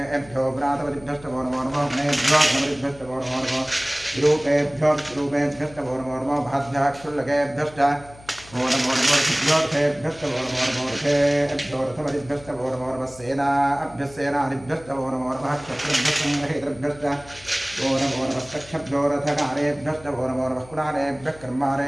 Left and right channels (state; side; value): noise; left; hum, 21 dB below the sound